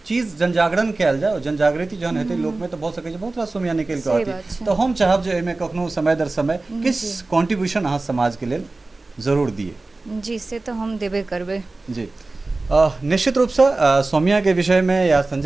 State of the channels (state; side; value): quieter; left; 3.3 dB